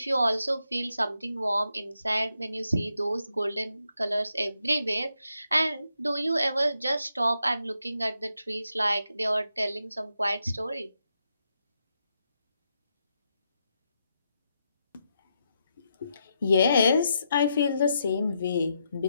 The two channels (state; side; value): inverted; both; correlation -0.82